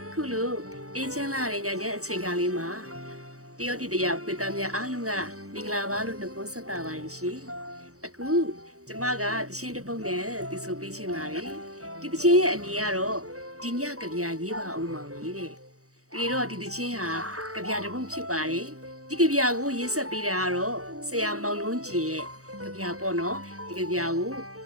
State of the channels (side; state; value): left; late; 0.65 ms